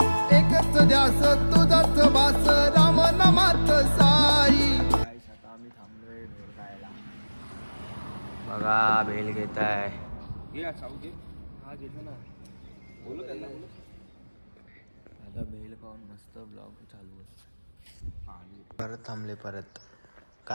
एकच ध्यास तुझाच बास, राम नामात साई. आता आम्ही थांबलोय भेल खायला. बघा भेल घेत आहे. घे साऊ घे. हा घेतो ना, बोलू त्यांना. आता भेल खाऊन मस्त ब्लॉग चालू आहे. परत थांबले परत.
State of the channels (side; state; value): both; inverted; correlation -1.00